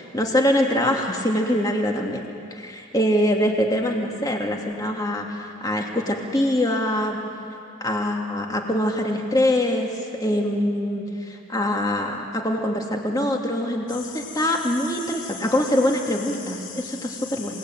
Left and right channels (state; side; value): normal; both; correlation 0.65